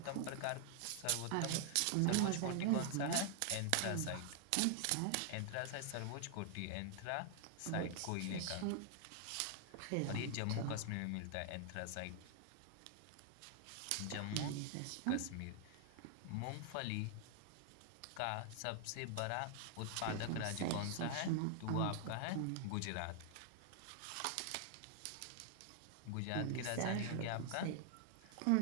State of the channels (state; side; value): different; both; correlation 0.00